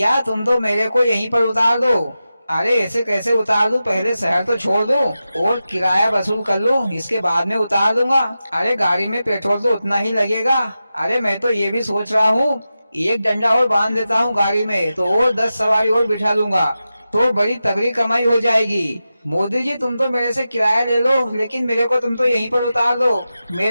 तुम तो मेरे को यहीं पर उतार दो। अरे ऐसे कैसे उतार दूं? पहले शहर तो छोड़ दूं और किराया वसूल कर लूं, इसके बाद में उतार दूंगा। अरे गाड़ी में पेट्रोल तो उतना ही लगेगा। अरे मैं तो ये भी सोच रहा हूँ, एक डंडा और बांध देता हूँ गाड़ी में तो और 10 सवारी और बिठा लूंगा, तो बड़ी तगड़ी कमाई हो जाएगी। मोदी जी तुम तो मेरे से किराया ले लो लेकिन मेरे को तुम तो यहीं पर उतार दो।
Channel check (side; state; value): both; inverted; correlation -0.92